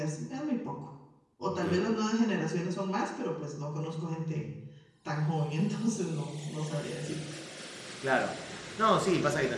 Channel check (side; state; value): both; identical; correlation 1.00